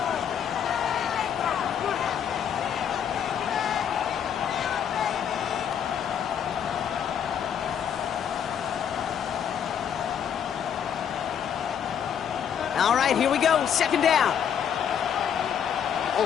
All right, here we go. 2nd down. All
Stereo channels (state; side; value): quieter; right; 8.5 dB